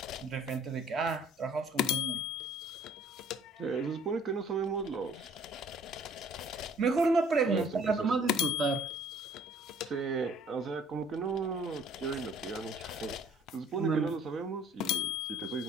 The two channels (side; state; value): both; normal; correlation 0.55